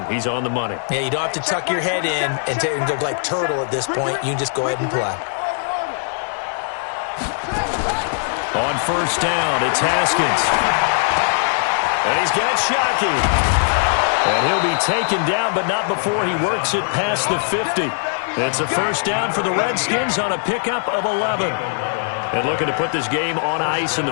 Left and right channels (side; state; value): right; silent; 66 dB below the other